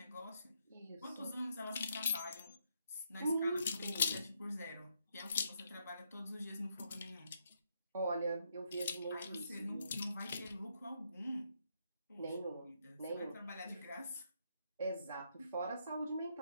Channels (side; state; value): both; inverted; correlation -0.77